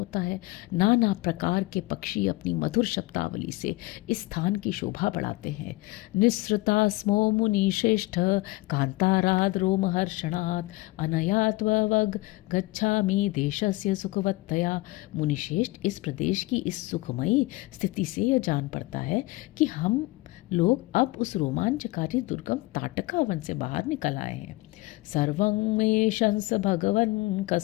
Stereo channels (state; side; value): quieter; right; 21.2 dB